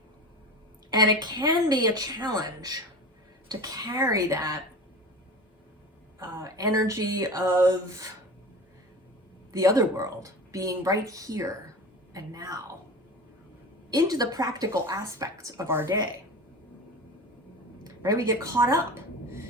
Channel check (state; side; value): normal; both; correlation 0.33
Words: And it can be a challenge to carry that energy of the other world being right here and now into the practical aspects of our day. Right? We get caught up